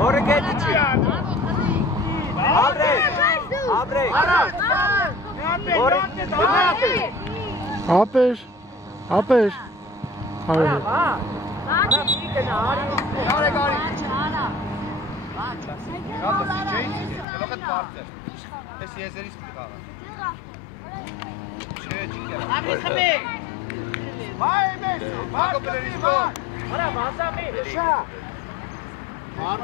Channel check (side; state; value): right; drops out; at 17.2 s